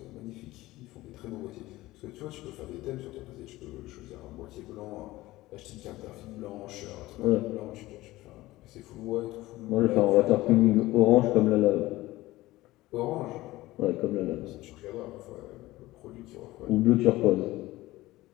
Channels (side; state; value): right; quieter; 17.9 dB